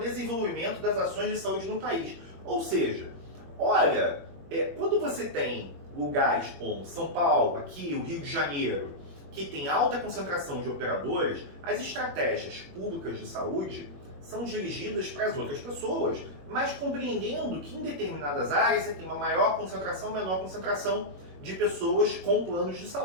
das ações de saúde no país. Ou seja, olha, quando você tem lugares como São Paulo, aqui, o Rio de Janeiro, que tem alta concentração de operadores, as estratégias públicas de saúde são dirigidas para as outras pessoas, mas compreendendo que em determinadas áreas você tem uma maior concentração, menor concentração de pessoas com planos de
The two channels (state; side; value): late; left; 21 ms